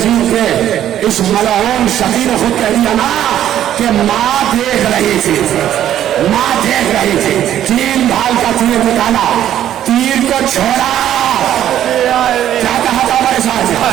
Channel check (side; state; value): left; quieter; 11.4 dB